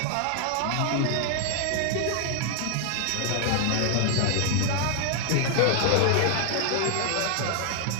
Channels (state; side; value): different; both; correlation 0.00